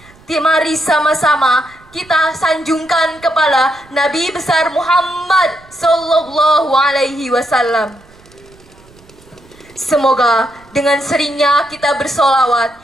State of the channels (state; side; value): noise; right; rumble, 27 dB below the sound